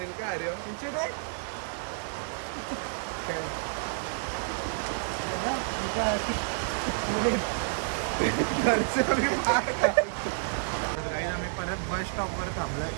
का? अरे तुमचे ते काय तर काही आम्ही परत बस स्टॉपवर थांबलो.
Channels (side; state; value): left; silent; 58 dB below the other